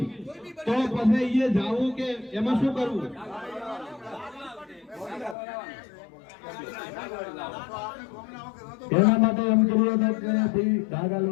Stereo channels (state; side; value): drops out; right; at 5.4 s